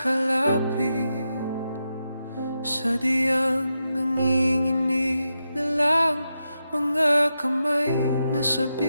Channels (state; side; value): inverted; both; correlation -0.87